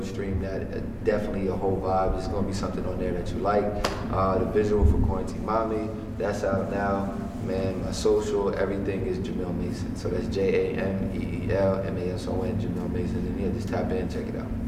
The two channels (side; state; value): both; identical; correlation 1.00